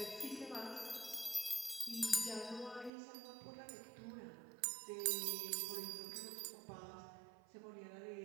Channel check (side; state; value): left; drops out; at 2.9 s